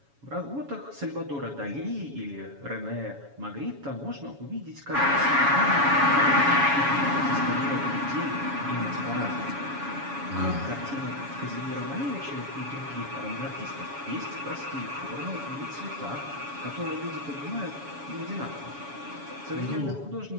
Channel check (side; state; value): left; late; 7.1 ms